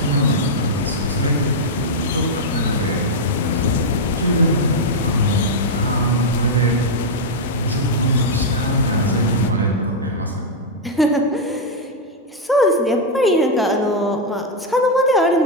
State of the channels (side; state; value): both; normal; correlation -0.02